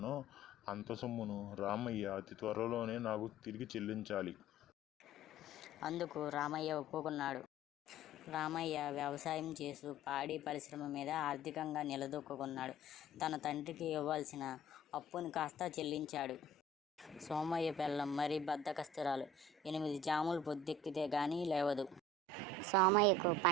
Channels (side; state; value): both; normal; correlation 0.45